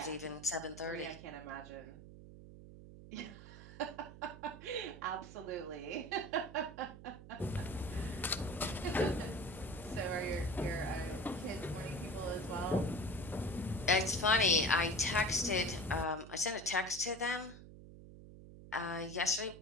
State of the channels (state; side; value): noise; right; hum, 16 dB below the sound